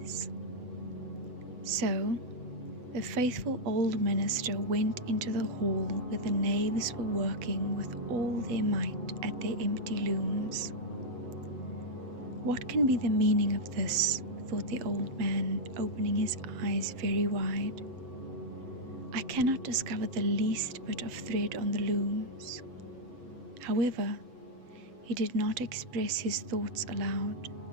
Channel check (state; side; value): late; left; 8.0 ms